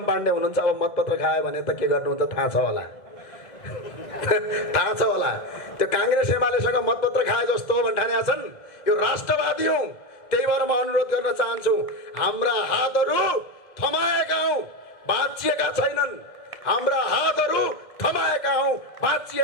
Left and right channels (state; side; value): late; right; 2.0 ms